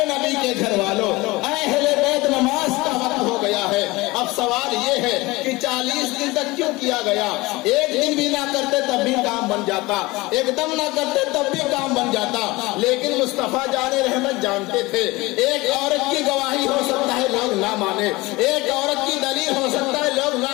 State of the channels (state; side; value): quieter; right; 21.7 dB